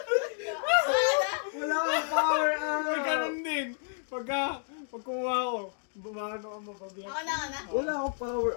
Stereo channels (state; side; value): silent; right; digital silence